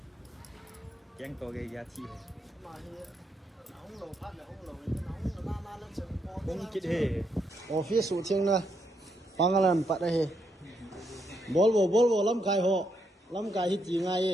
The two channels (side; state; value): both; normal; correlation 0.78